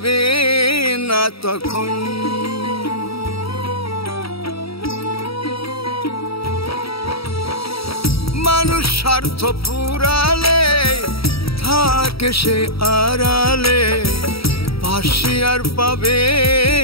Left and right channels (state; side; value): late; right; 0.76 ms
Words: না তখন। মানুষ স্বার্থ পুরালে থাকে সে আড়ালে, পাশে আর পাবে